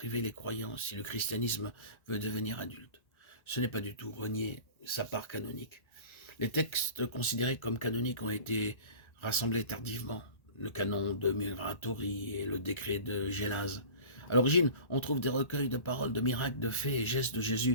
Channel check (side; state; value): right; late; 1.3 ms